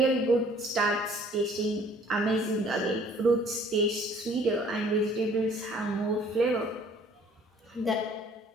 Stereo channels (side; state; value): both; normal; correlation 0.56